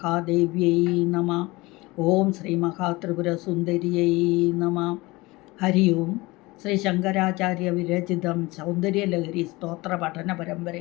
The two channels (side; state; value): right; quieter; 22.0 dB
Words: നമ. ഓം ശ്രീ മഹാത്രിപുരസുന്ദരിയൈ നമ. ഹരി ഓം. ശ്രീ ശങ്കരാചാര്യ വിരചിതം സൗന്ദര്യലഹരി സ്തോത്ര പഠന